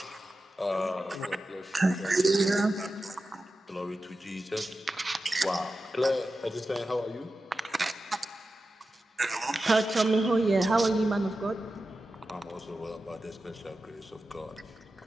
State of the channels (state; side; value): normal; both; correlation 0.92